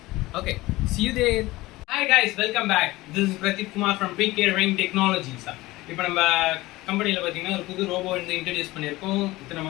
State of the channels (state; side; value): quieter; right; 19.2 dB